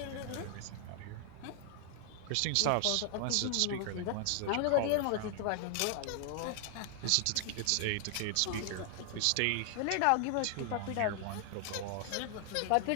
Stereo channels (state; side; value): different; both; correlation 0.00